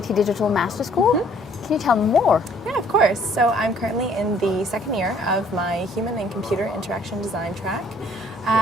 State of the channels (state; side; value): normal; both; correlation 0.60